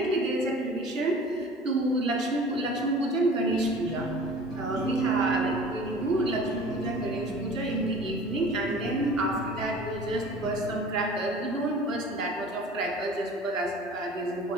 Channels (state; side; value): normal; both; correlation 0.44